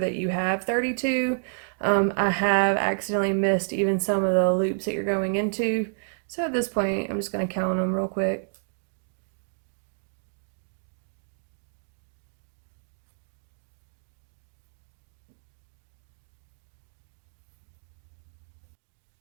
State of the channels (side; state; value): left; silent; digital silence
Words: you have 32. I have accidentally missed even some of the loops that you're going into. So at this point, I'm just going to count them real quick.